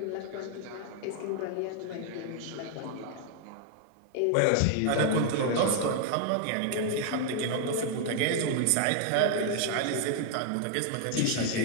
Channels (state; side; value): different; both; correlation 0.00